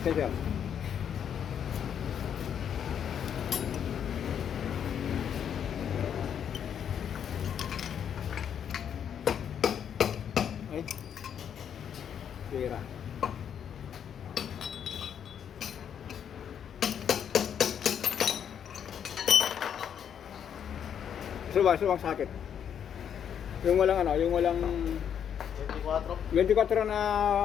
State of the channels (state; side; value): quieter; right; 8.5 dB